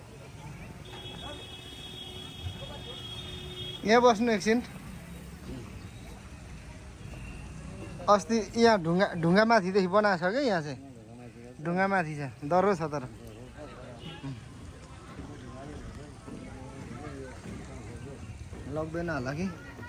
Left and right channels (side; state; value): both; identical; correlation 1.00